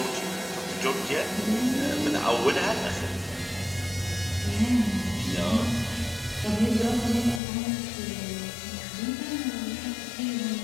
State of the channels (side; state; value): right; drops out; at 7.4 s